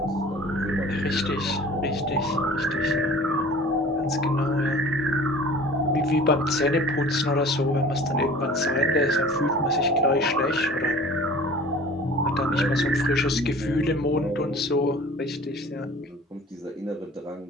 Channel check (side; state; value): both; normal; correlation 0.45